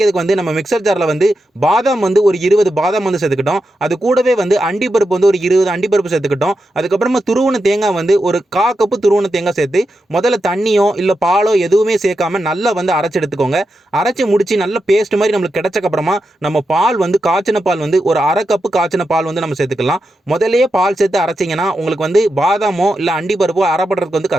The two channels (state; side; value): normal; both; correlation 0.88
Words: வந்து நம்ம மிக்சர் ஜாரில் வந்து பாதாம் வந்து ஒரு 20 பாதாம் வந்து சேர்த்துக்கிட்டோம். அது கூடவே வந்து அண்டிப்பருப்பு வந்து ஒரு 20 அண்டிப்பருப்பு சேர்த்துக்கிட்டோம். அதுக்கப்புறமா துருவன தேங்காய் வந்து ஒரு 1/4 கப்பு துருவன தேங்காய் சேர்த்து முதல்ல தண்ணியோ இல்லை பாலோ எதுவுமே சேர்க்காம நல்லா வந்து அரைச்சு எடுத்துக்கோங்க. அரைச்சு முடிச்சு நல்ல பேஸ்ட் மாதிரி நம்மளுக்கு கிடைச்சக்கு அப்புறமா நம்ம பால் வந்து காய்ச்சின பால் வந்து ஒரு 1/2 கப்பு காய்ச்சின பால் வந்து நம்ம சேர்த்துக்கலாம். முதல்லயே பால் சேர்த்து அரைச்சிங்கன்னா உங்களுக்கு வந்து பாதாமோ இல்லை அண்டிப்பருப்போ அரைப்படுறதுக்கு வந்து